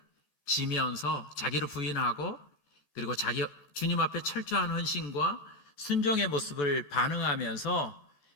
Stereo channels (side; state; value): right; late; 14 ms